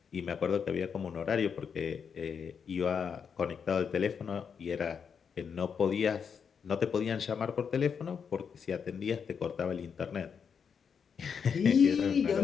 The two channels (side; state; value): right; quieter; 6.7 dB